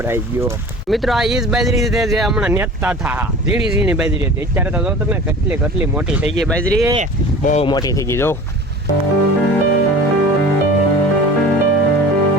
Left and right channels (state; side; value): normal; both; correlation 0.40